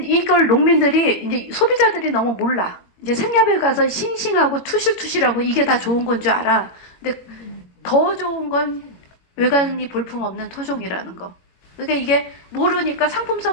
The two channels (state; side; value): late; right; 21 ms